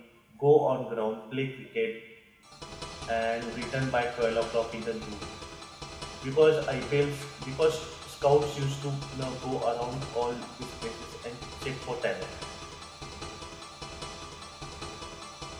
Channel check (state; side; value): identical; both; correlation 1.00